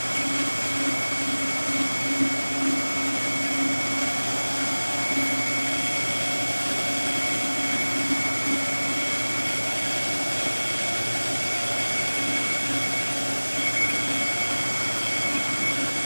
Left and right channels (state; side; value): inverted; both; correlation -1.00